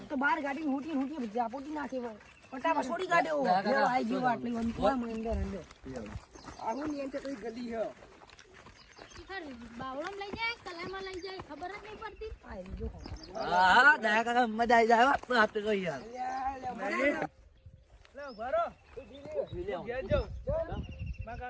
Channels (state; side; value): identical; both; correlation 1.00